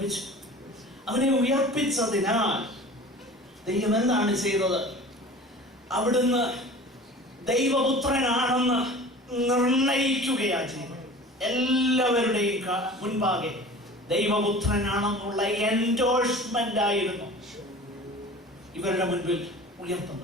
അവനെ ഉയർപ്പിച്ചതിനാൽ ദൈവം എന്താണ് ചെയ്തത്? അവിടുന്ന് ദൈവപുത്രനാണെന്ന് നിർണയിക്കുകയാണ് ചെയ്തത്. എല്ലാവരുടെയും മുൻപാകെ ദൈവപുത്രനാണെന്നുള്ള എൻഡോഴ്സ്മെന്റ് ആയിരുന്നു ഇവരുടെ മുൻപിൽ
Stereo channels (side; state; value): both; normal; correlation 0.40